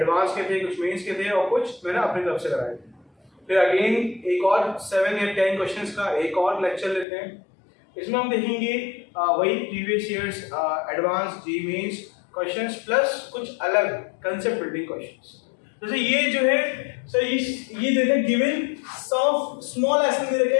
के थे, कुछ मेंस के थे और कुछ मैंने अपनी तरफ से कराए थे। फिर अगेन एक और 7 या 10 क्वेश्चंस का एक और लेक्चर लेते हैं। इसमें हम देखेंगे वही प्रीवियस ईयर्स एडवांस जी मेंस क्वेश्चंस प्लस कुछ अलग कंसेप्ट बिल्डिंग क्वेश्चंस। जैसे ये जो है सर ये दे रखा है गिवन सम स्मॉल एसएन दे रखा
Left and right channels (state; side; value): drops out; right; at 7.1 s